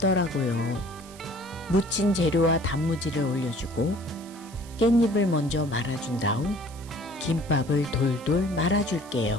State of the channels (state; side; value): noise; right; hiss, 20 dB below the sound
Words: 무친 재료와 단무지를 올려주고 깻잎을 먼저 말아준 다음 김밥을 돌돌